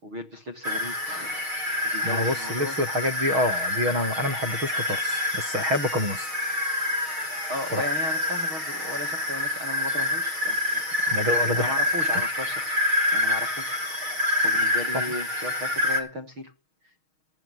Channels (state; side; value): late; left; 6.4 ms